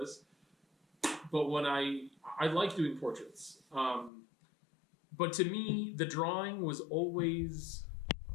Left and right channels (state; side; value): drops out; right; at 4.1 s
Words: But when I like doing portraits. But to me, the drawing was always